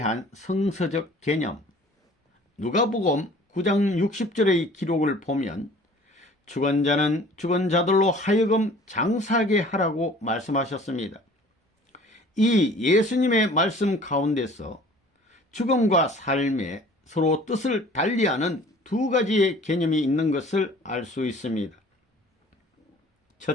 성서적 개념. 누가복음 9장 60절의 기록을 보면 죽은 자는 죽은 자들로 하여금 장사하게 하라고 말씀하셨습니다. 이 예수님의 말씀 가운데서 죽음과 삶에 서로 뜻을 달리하는 두 가지의 개념이 있는 것을 알 수 있습니다.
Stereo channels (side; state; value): both; normal; correlation 0.49